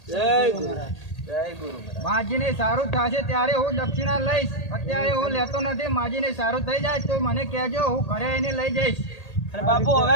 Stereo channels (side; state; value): right; late; 1.8 ms